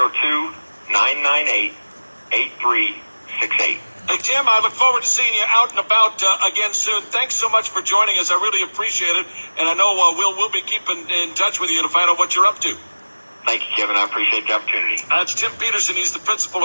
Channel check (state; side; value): inverted; both; correlation -1.00